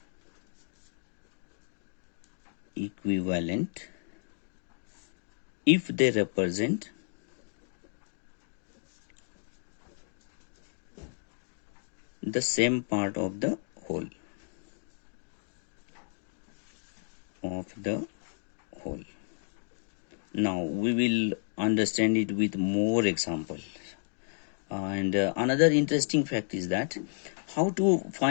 if they represent the same part of the whole. Now we will understand it with more examples. And another interesting fact is that how to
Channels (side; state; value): right; silent; digital silence